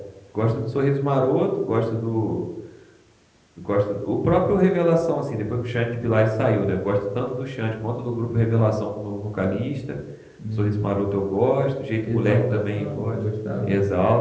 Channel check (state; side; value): identical; both; correlation 1.00